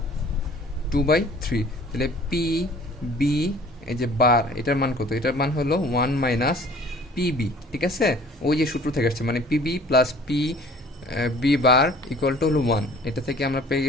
2/3। তাহলে পি বি এই যে বার এটার মান কত, এটার মান হলো 1 মাইনাস পিবি, ঠিক আছে, ওই যে সূত্র থেকে আসছে, মানে PB plus P B bar equal to হলো 1, এটা থেকে আমরা পেয়ে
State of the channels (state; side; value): normal; both; correlation 0.51